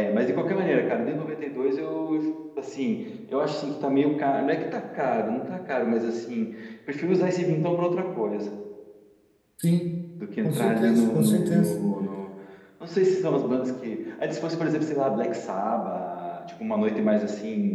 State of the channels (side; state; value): both; identical; correlation 1.00